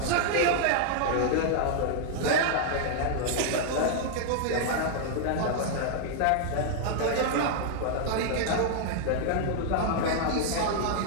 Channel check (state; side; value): different; both; correlation -0.01